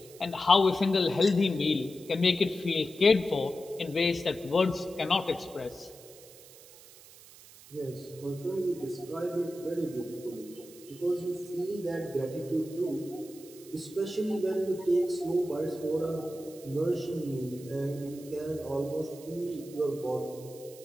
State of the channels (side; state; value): right; noise; hiss, 20 dB below the sound